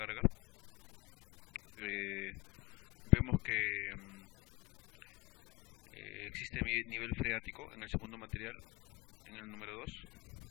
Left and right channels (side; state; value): right; quieter; 25.2 dB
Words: Vemos que existe nivel freático en el segundo material, en el número 2,